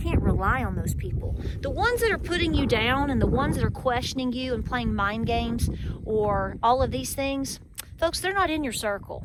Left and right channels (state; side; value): identical; both; correlation 1.00